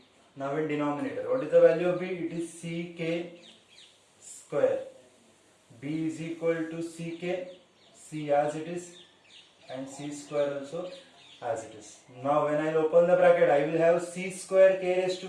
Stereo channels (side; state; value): both; identical; correlation 1.00